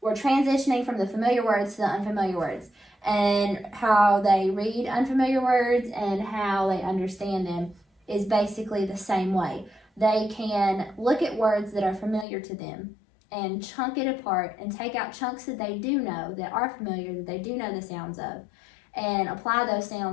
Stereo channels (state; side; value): drops out; right; at 12.2 s